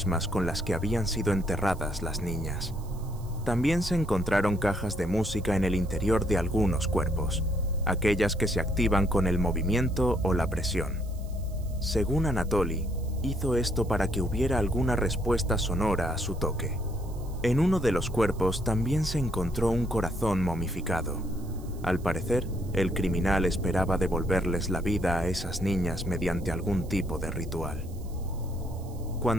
con las que habían sido enterradas las niñas. También se encontraron cajas de música en el interior de algunos cuerpos, aquellas que se activan con el movimiento o la presión. Según Anatoly, hizo esto para que hubiera alguna respuesta sonora a su toque. En uno de los cuerpos también se encontró un corazón momificado. Al parecer, el criminal esperaba devolverles la vida a esas niñas mediante algún tipo de ritual.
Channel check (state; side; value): noise; right; hiss, 24 dB below the sound